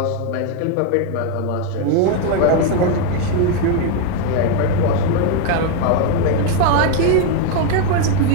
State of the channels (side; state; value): both; different; correlation 0.01